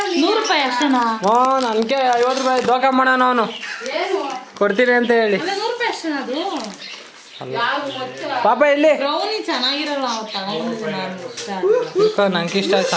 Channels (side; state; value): both; identical; correlation 1.00